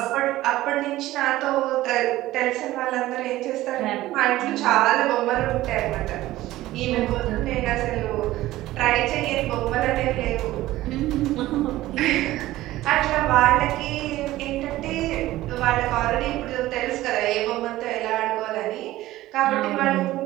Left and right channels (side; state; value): left; quieter; 16.2 dB